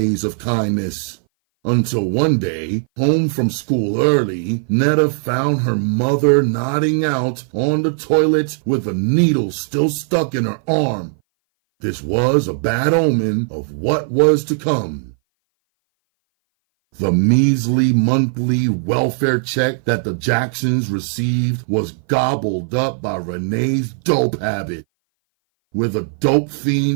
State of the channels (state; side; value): silent; left; 59 dB below the other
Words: of kindness. Until one day, home from school early, Netta found her mother nodding out on the toilet with a needle still stuck in her arm. This was a bad omen of what was to come. The measly monthly welfare check that the Jacksons received was gobbled up by Renee's dope habit. With a dope